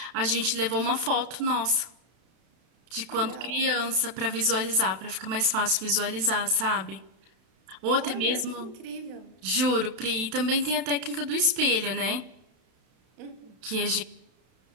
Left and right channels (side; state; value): left; late; 32 ms